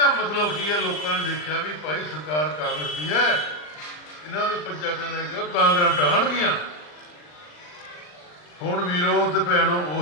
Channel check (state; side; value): late; right; 39 ms